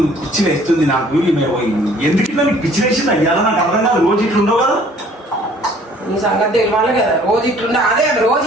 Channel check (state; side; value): normal; both; correlation 0.56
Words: పిచ్చి వేస్తుంది. నాకు ఎందుకు ఇట్లా నీకు పిచ్చి వేసింది అయ్యాలా నాకు అర్థం కాదు. రోజు ఇట్లా ఉండవు కదా. నీ సంగతి తెలియాలి కదా. రోజు ఇట్లుండా అదే రోజు